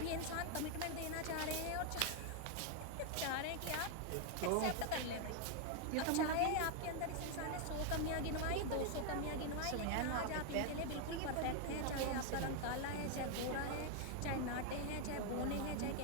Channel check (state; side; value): different; both; correlation 0.01